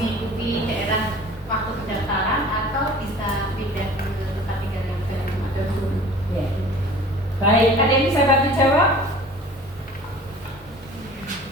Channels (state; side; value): normal; both; correlation 0.45